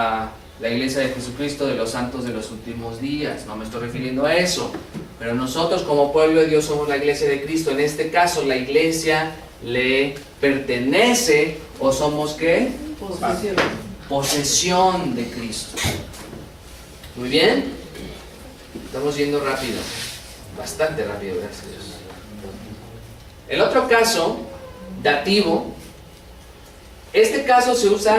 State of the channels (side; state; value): both; identical; correlation 1.00